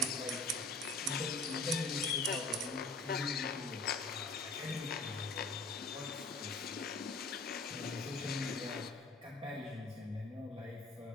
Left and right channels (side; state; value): right; quieter; 3.1 dB